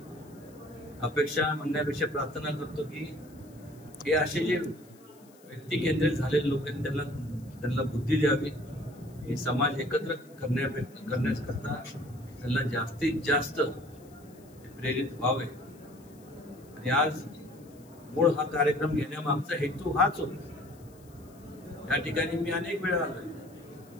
अपेक्षा म्हणण्यापेक्षा प्रार्थना करतो की हे असे जे व्यक्ती केंद्रित झालेले लोक आहेत त्यांना बुद्धी द्यावी, हे समाज एकत्र करण्याकरता त्यांना जास्तीत जास्त प्रेरित व्हावे. आणि आज मूळ हा कार्यक्रम घेण्यामागचा हेतू हाच होता. या ठिकाणी मी अनेक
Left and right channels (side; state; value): left; noise; hiss, 27 dB below the sound